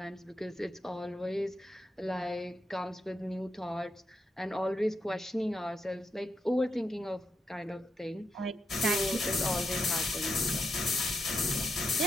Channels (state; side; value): normal; both; correlation 0.84